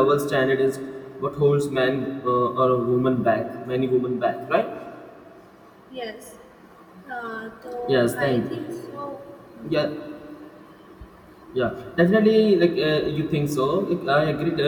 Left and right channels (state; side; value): identical; both; correlation 1.00